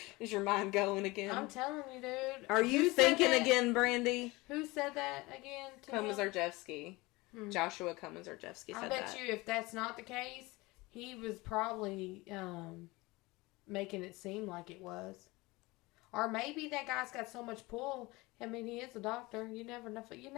Is your mind going again? I'm telling you, dude. Are you thinking again, Brandy? Who said that again to him? Komisarjevsky. Joshua Komisarjevsky said I that. bet you if that's not the case, he was probably making it seem like it was. Or maybe that guy's got so much pull. I mean, he is a doctor. You never know. You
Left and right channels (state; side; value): quieter; right; 22.3 dB